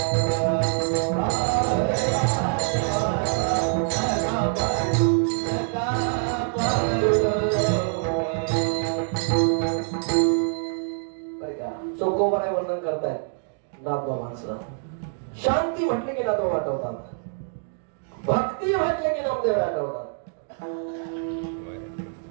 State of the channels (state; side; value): silent; left; digital silence